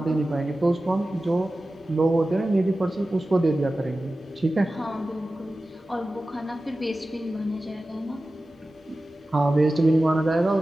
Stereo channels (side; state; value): both; normal; correlation 0.95